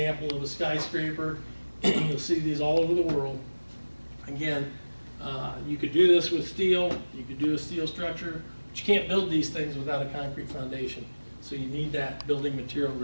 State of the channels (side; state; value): both; inverted; correlation -1.00